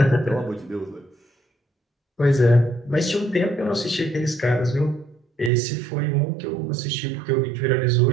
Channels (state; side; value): drops out; left; at 5.5 s